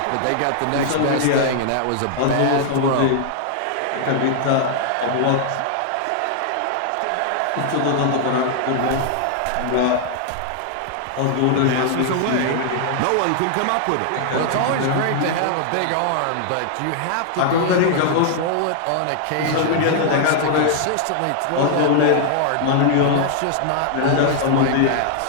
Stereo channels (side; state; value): both; different; correlation -0.01